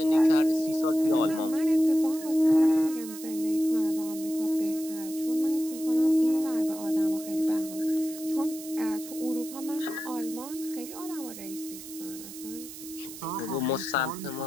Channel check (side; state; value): right; noise; hiss, 13 dB below the sound